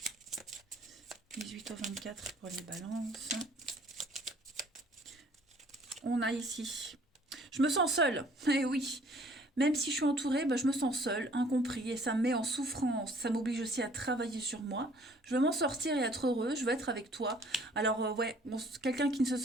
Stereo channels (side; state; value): both; normal; correlation 0.57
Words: « 18 au 24 pour les balances. » On a ici. Je me sens seule. Eh oui. Même si je suis entourée, je me sens seule, incompris, et ça me met en souffrance. Ça m'oblige aussi à travailler sur moi. Je veux m'en sortir et être heureux. Je veux être avec toi. Alors, ouais, quelqu'un qui ne se